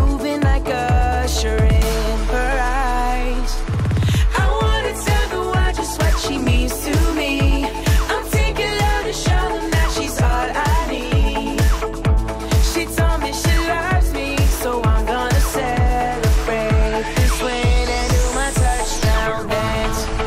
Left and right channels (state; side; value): identical; both; correlation 1.00